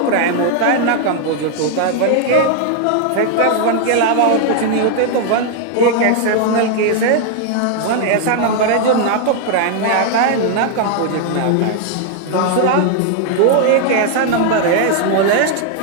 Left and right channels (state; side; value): different; both; correlation 0.00